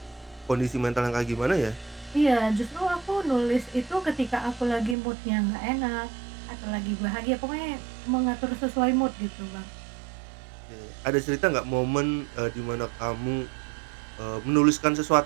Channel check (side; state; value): left; drops out; at 5.0 s